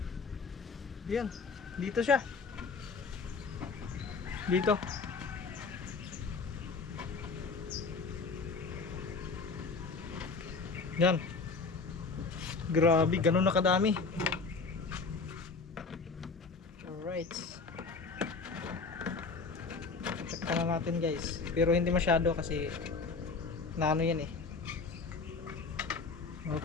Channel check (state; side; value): quieter; right; 4.4 dB